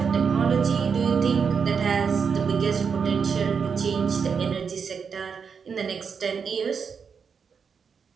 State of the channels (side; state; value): left; quieter; 6.2 dB